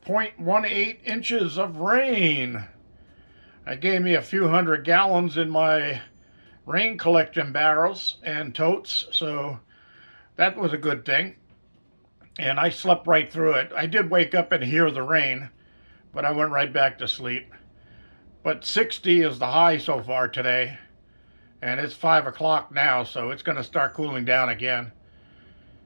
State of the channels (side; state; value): both; inverted; correlation -1.00